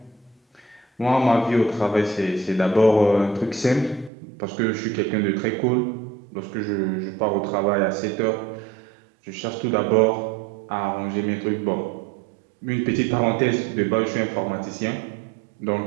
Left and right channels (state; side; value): drops out; left; at 4.1 s